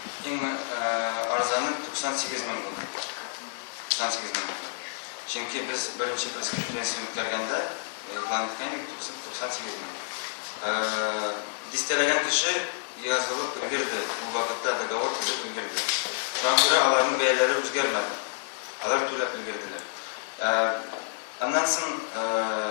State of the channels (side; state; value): right; silent; digital silence